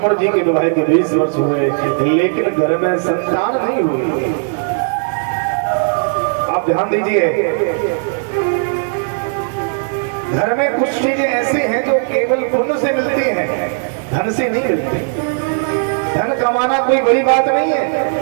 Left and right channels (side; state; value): left; silent; digital silence